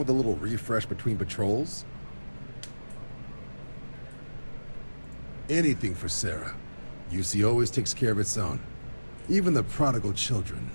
a little refresh between patrols. Anything for Sarah. UC always takes care of its own. Even the prodigal children.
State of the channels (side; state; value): both; inverted; correlation -1.00